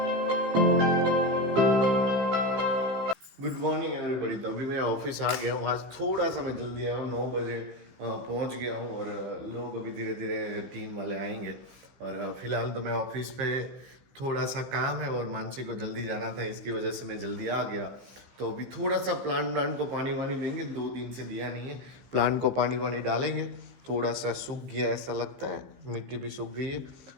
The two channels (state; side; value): late; left; 15 ms